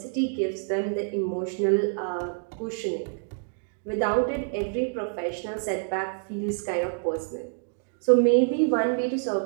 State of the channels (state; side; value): silent; left; digital silence